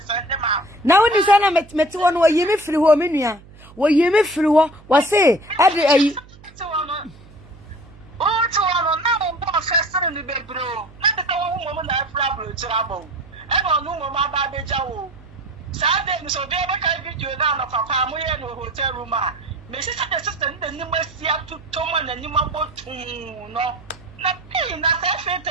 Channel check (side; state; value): right; noise; hum, 22 dB below the sound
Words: them out? Now when you say na met one wo yimi free ho me nua. Wo yimi free ho, wa say, ade oh, to one now one first in the bed, bro. Not the one woman that problem trouble. And on no mama baby jaw. Saturday, so they make a video down of a family in a hotel room. Mrs. Assistant, the new Messia to Tom and the new boat. No, nothing. That's a fit.